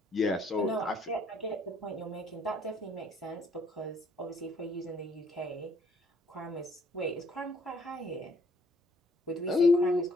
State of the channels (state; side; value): normal; both; correlation 0.65